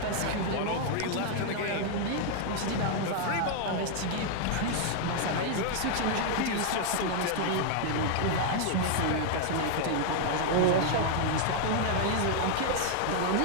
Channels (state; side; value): different; both; correlation 0.00